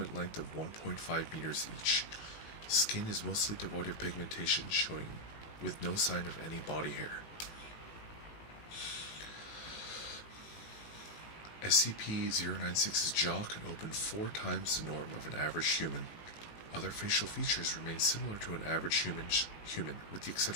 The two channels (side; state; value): right; late; 18 ms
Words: length of 1.5 meters each. Skin is mostly devoid of pigmentation, showing with no sign of any body hair. SCP-096's jaw can open 4 times the norm of an average human. Other facial features remain similar to an average human, with the